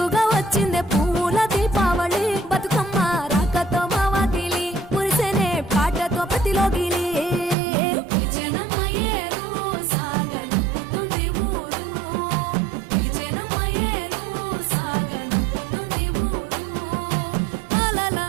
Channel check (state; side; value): drops out; left; at 7.6 s